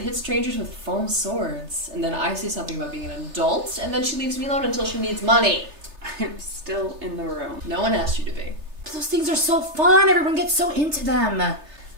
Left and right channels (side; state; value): left; late; 3.3 ms